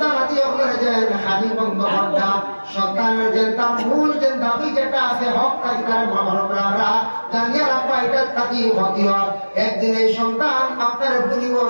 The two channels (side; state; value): both; inverted; correlation -1.00